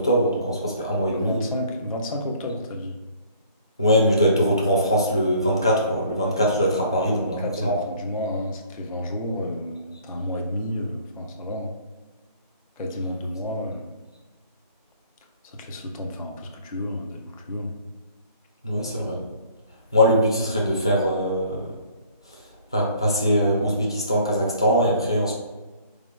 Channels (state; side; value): inverted; both; correlation -0.55